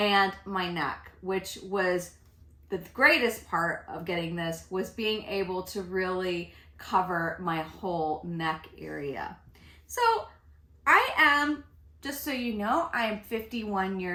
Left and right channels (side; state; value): both; identical; correlation 1.00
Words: my neck, which was the greatest part of getting this was being able to really cover my whole neck area. So I am, just so you know, I am 51